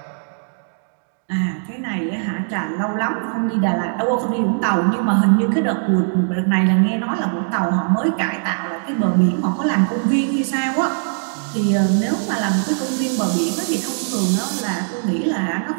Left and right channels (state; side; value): silent; left; digital silence